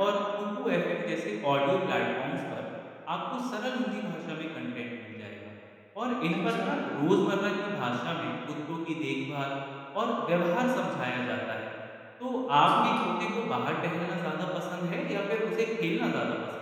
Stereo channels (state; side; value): identical; both; correlation 1.00